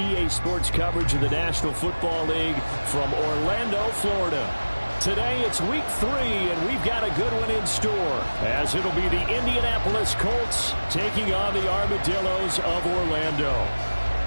Sports coverage of the National Football League from Orlando, Florida. Today it's week 3, and we've got a good one in store, as it'll be the Indianapolis Colts taking on the Armadillos of Orlando.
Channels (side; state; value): both; inverted; correlation -1.00